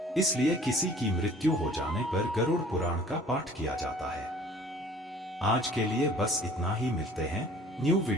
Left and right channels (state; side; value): normal; both; correlation 0.51